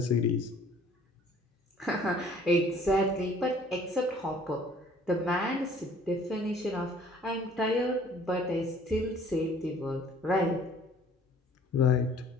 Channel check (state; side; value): normal; both; correlation 0.55